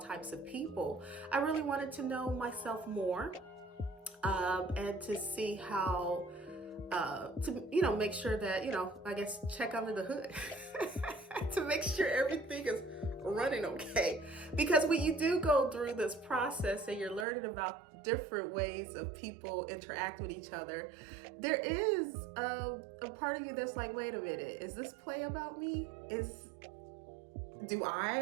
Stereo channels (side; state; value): left; drops out; at 17.2 s